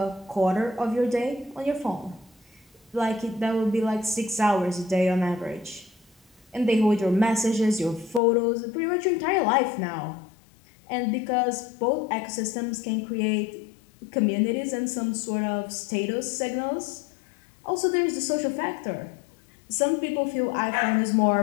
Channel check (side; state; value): right; drops out; at 8.2 s